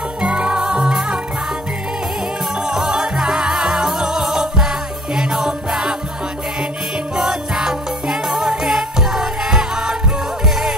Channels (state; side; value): normal; both; correlation 0.53